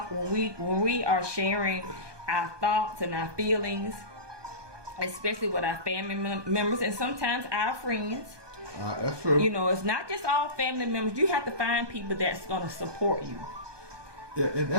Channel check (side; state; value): left; late; 1.2 ms